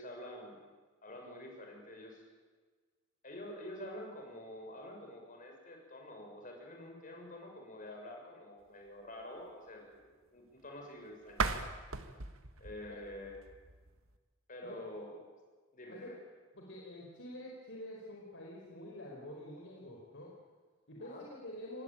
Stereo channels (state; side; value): normal; both; correlation 0.17